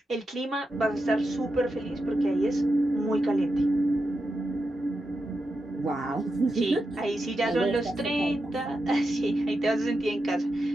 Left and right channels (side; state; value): both; normal; correlation 0.88